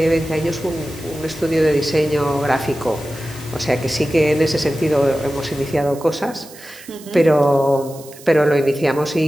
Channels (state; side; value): noise; right; hiss, 19 dB below the sound